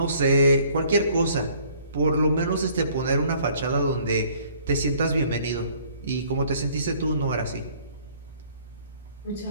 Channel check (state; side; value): inverted; both; correlation -0.58